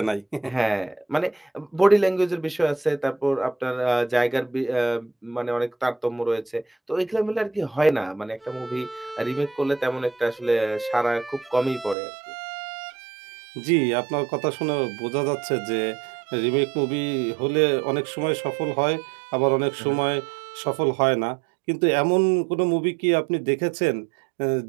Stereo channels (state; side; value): drops out; left; at 12.0 s